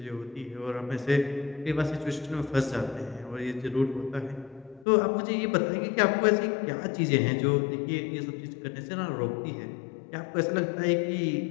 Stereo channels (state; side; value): drops out; right; at 4.9 s